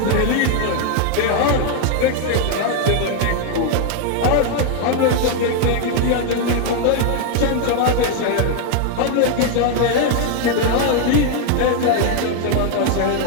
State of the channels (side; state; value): both; different; correlation 0.00